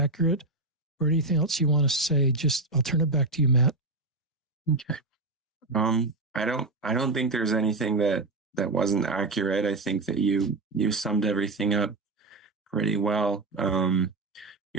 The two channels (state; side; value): quieter; left; 3.1 dB